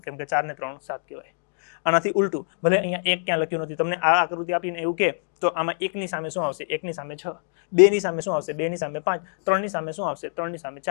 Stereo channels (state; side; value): silent; right; digital silence